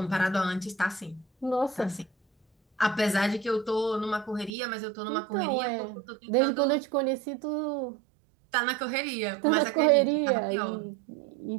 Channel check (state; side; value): drops out; left; at 4.5 s